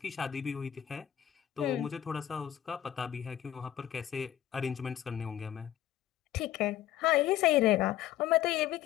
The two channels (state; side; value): quieter; right; 11.7 dB